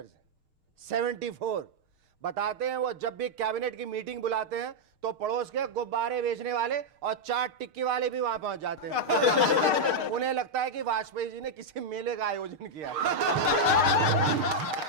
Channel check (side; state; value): left; late; 6.5 ms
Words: 74। बताते हैं वो जब भी cabinet की meeting बुलाते हैं तो पड़ोस के गुब्बारे बेचने वाले और चाट टिक्की वाले भी वहां पहुंच जाते हैं। उन्हें लगता है कि वाजपेयी जी ने किसी मेले का आयोजन किया।